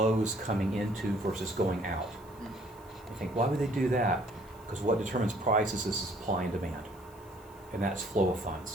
coming into versus going out. I think, why would they do that? Because what determines prices is supply and demand, and that's flow of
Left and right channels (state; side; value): noise; left; hiss, 26 dB below the sound